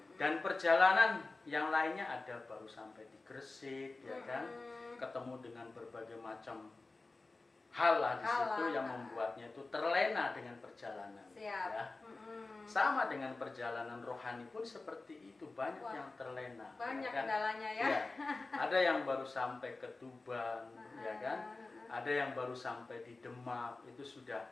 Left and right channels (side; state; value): right; quieter; 3.4 dB